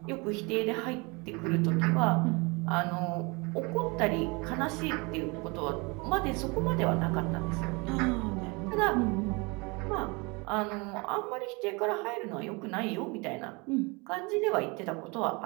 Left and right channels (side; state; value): left; quieter; 28.2 dB